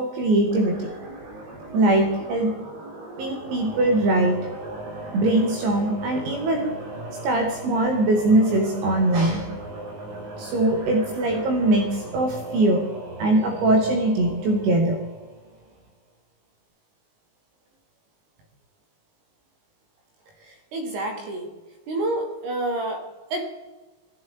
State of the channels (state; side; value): late; left; 19 ms